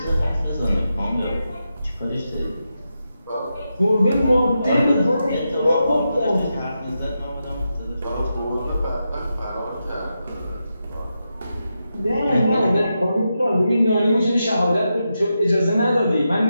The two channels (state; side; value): inverted; both; correlation -0.87